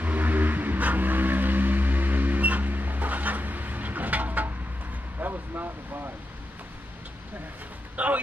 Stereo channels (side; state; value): both; normal; correlation 0.88